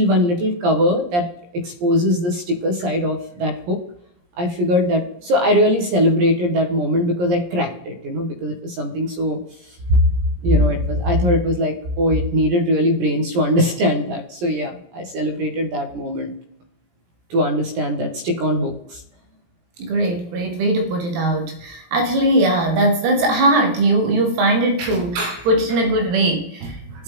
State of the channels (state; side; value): late; left; 17 ms